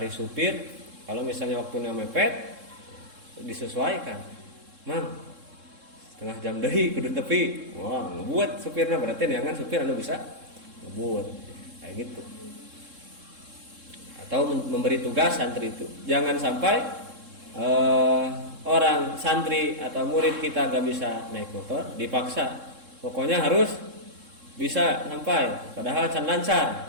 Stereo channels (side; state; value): left; late; 3.7 ms